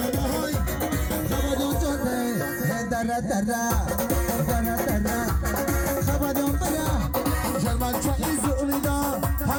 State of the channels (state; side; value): identical; both; correlation 1.00